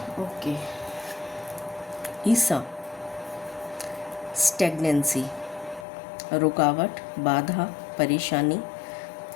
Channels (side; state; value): right; drops out; at 5.9 s